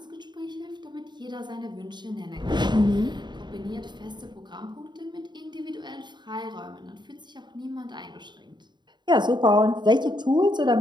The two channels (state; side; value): late; left; 0.22 ms